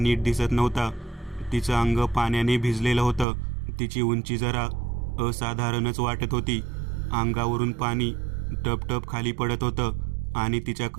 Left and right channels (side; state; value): left; drops out; at 3.2 s